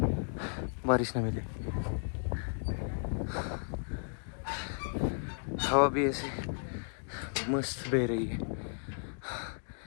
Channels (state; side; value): silent; right; digital silence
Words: बारिश ना मिले। हवा भी ऐसे मस्त बह रही है।